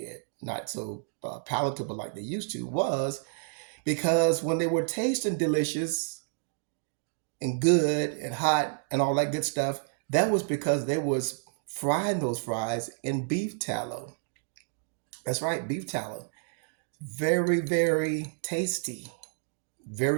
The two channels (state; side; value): silent; left; digital silence